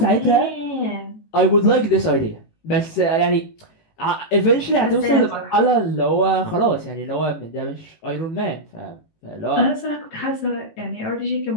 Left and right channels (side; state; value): right; late; 18 ms